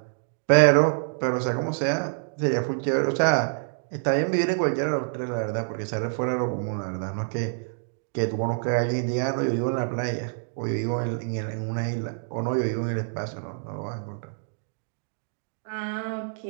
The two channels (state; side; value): silent; left; digital silence